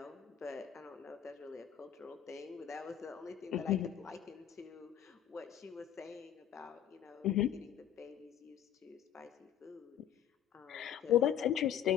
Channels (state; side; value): quieter; right; 10.1 dB